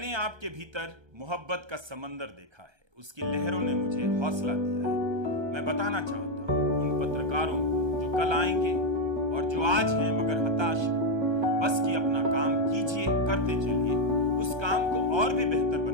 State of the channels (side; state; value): left; late; 1.3 ms